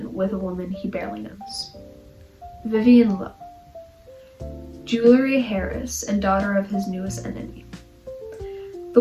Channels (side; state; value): both; identical; correlation 1.00